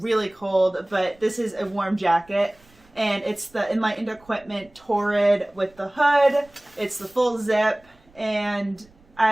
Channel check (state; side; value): noise; right; rumble, 30 dB below the sound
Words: cold, but this is a warm jacket, and it's the Enlightened Equipment Torrid with the hood. It's the full zip, and